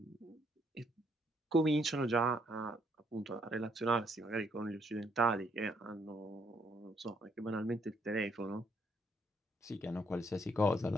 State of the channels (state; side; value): normal; both; correlation 0.71